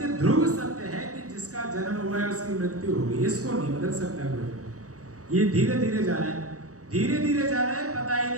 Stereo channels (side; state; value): left; late; 0.66 ms